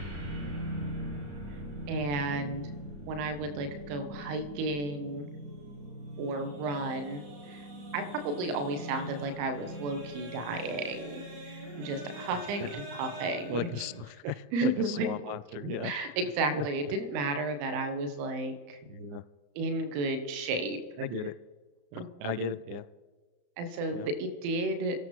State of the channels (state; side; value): late; left; 34 ms